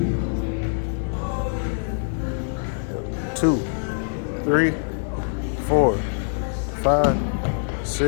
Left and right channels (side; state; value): right; silent; digital silence